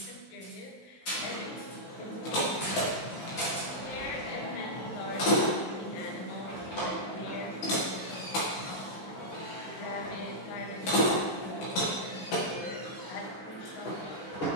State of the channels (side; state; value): right; late; 16 ms